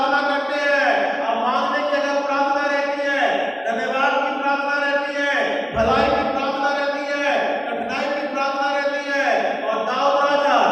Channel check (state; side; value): identical; both; correlation 1.00